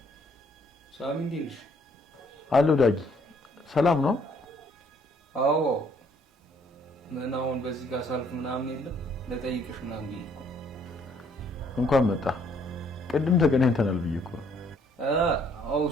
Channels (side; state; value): both; normal; correlation 0.65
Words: ሳሚ እንዴት ነሽ? አሎ ዳጊ ሰላም ነው? አዎ ምን አሁን በዚህ ጋር ሳልፍ ምናምን የለም ለጠይቅሽ ምናምን ብዬሽ እኮ እንኳን መጣ። ቅድም ተገናኝተናል ብዬሽ እኮ ነው። አዎ